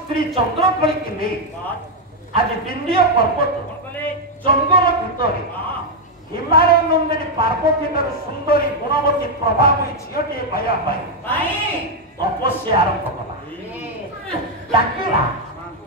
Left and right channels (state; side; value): normal; both; correlation 0.01